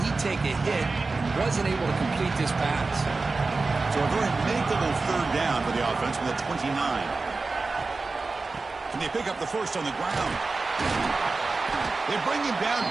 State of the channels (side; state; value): left; quieter; 3.8 dB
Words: take a hit. Wasn't able to complete this pass. So a very makeable 3rd down for the offense with a 29. Can they pick up the 1st on the ground? They bring him down